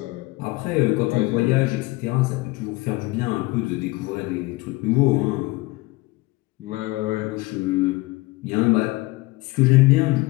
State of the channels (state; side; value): quieter; right; 21.7 dB